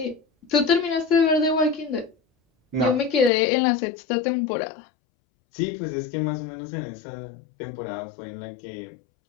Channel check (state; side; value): drops out; right; at 3.3 s